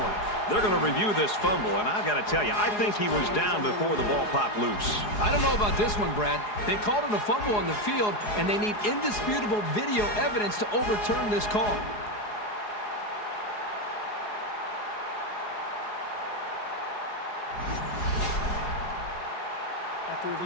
They're going to review this fumble, and I've got to tell you, I think he was down before the ball popped loose. I don't know about this one, Brad. They called it a fumble on the field, and they need indisputable video evidence to overturn this call. After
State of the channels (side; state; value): right; late; 4.8 ms